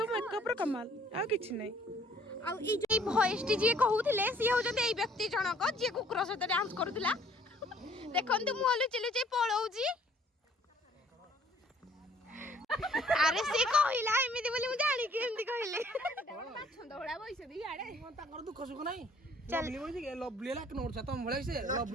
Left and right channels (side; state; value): both; normal; correlation 0.59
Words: ମେକଅପ୍ର କମାଲ ଆଉ କିଛି ନାହିଁ ଆଉ ଏଇ ଯୋଉ ଭଏସଟି ଯିଏ କହୁଥିଲେ ସିଏ ହଉଛନ୍ତି ଏଇ ବ୍ୟକ୍ତି ଜଣକ ଯିଏ କୁକୁର ସହିତ ଡ୍ୟାନ୍ସ କରୁଥିଲା ଦେଖନ୍ତୁ ମୁଁ ଲୁଚି ଲୁଚି ପଳଉଛି ଆରେ ସିଏ କହିଲା ଏମିତି ବୋଲି ମୁଁ ଜାଣିକି ଏମିତି କହିଲି ତାଙ୍କର ଦୁଃଖ ସୁଖ ନାହିଁ ଲଭଲି ବୋଇ ଲଭଲି ହେଲା 1 ନମ୍ବର ତମ ଭଳିଆ ସେ